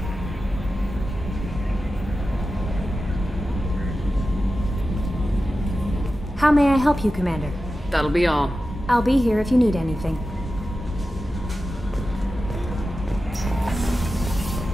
How may I help you, Commander? That'll be all. I'll be here if you need anything.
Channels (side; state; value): both; normal; correlation 0.93